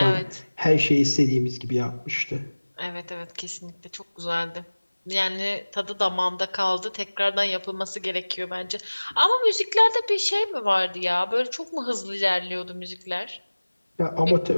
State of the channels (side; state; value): both; inverted; correlation -1.00